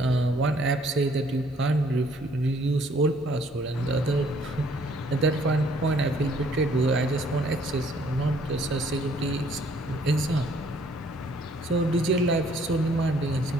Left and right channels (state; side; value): normal; both; correlation 0.62